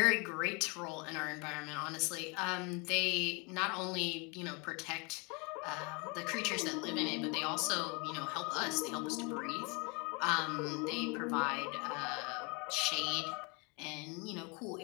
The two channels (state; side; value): quieter; right; 30.5 dB